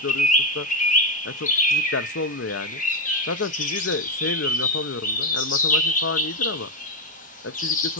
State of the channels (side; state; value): both; normal; correlation 0.07